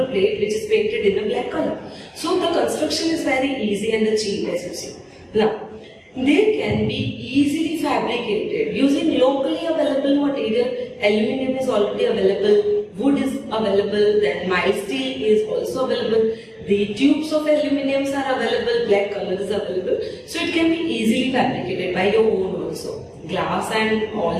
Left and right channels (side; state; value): both; identical; correlation 1.00